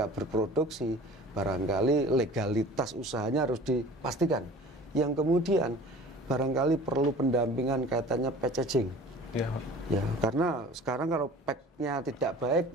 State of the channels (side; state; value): both; normal; correlation 0.44